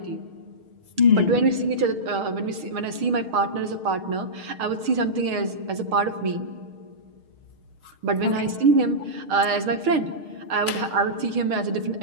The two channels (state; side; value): late; left; 6.5 ms